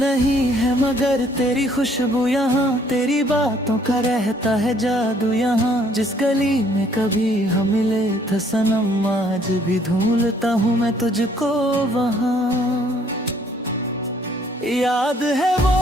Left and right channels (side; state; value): both; normal; correlation 0.63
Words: है मगर तेरी खुशबू यहाँ, तेरी बातों का रहता है जादू यहाँ। जिस गली में कभी हम मिले थे सनम, आज भी ढूंढता हूँ मैं तुझको वहाँ। याद है वो